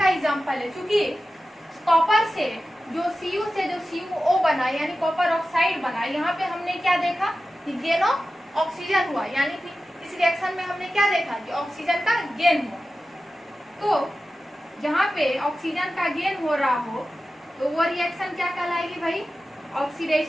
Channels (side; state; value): both; normal; correlation 0.94